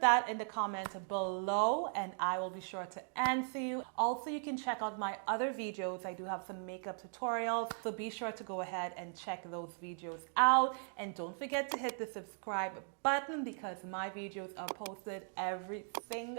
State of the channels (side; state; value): left; silent; 52 dB below the other